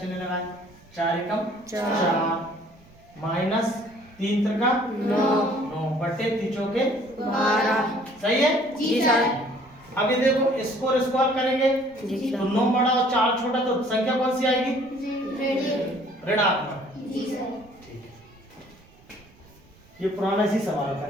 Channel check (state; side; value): noise; right; rumble, 27 dB below the sound